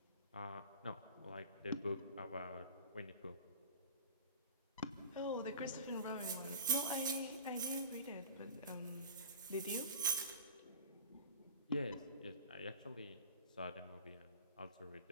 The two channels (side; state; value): both; inverted; correlation -0.39